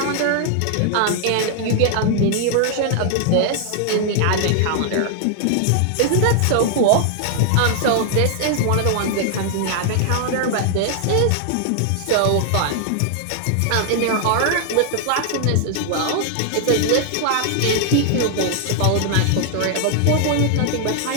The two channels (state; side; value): different; both; correlation 0.00